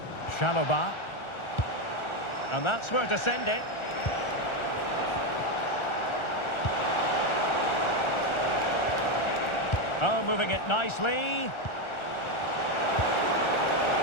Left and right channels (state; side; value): late; right; 1.4 ms